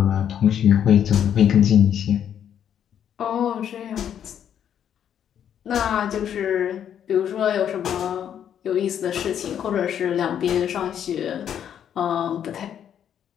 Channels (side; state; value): right; quieter; 9.3 dB